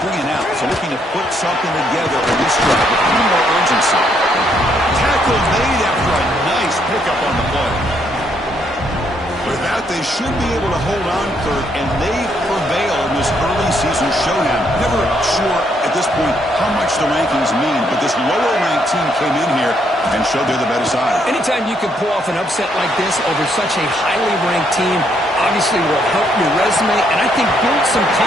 3 and out, so looking to put something together in this drive with a little more urgency. Tackle made after a nice pickup on the play. With that, they should be able to hold on, Kurt, and they prevail in this early season showdown. Never sure at this point how much the rankings mean, but this lower-ranked team came in here and showed they're the better side. Anytime you can pull off an upset like this over such a highly ranked team, obviously will help your resume, and I think build some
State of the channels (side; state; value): both; normal; correlation 0.72